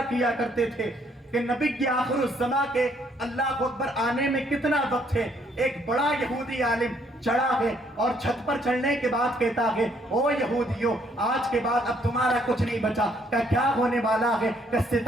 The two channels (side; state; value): both; normal; correlation 0.67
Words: کیا کرتے تھے کہ نبی کی آخر الزماں کے اللہ اکبر آنے میں کتنا وقت ہے، ایک بڑا یہودی عالم چڑھا ہے اور چھت پر چڑھنے کے بعد کہتا ہے او یہودیوں آج کے بعد اب تمہارا کچھ نہیں بچا، کہ کیا ہونے والا ہے، کہ